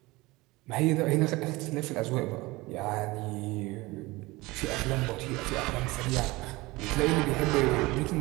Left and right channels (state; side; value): quieter; left; 21.7 dB